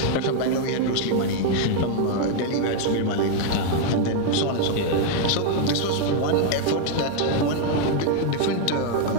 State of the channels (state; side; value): different; both; correlation 0.00